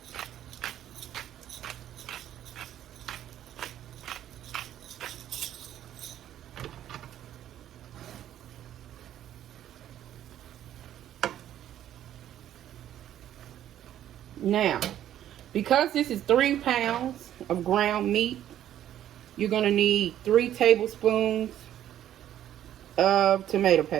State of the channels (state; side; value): quieter; left; 11.5 dB